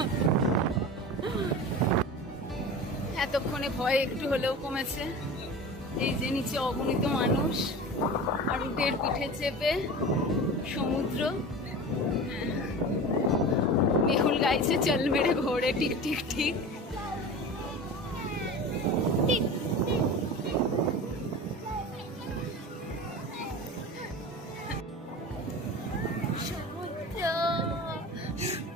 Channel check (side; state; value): both; normal; correlation 0.33